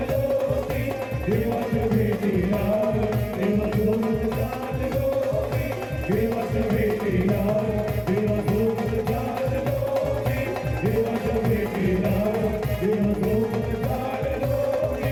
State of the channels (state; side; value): identical; both; correlation 1.00